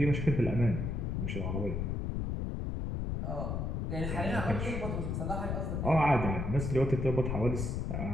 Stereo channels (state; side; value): noise; left; rumble, 1 dB below the sound